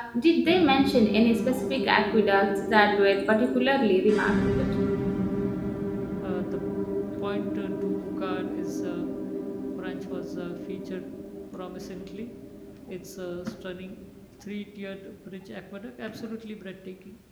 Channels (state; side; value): identical; both; correlation 1.00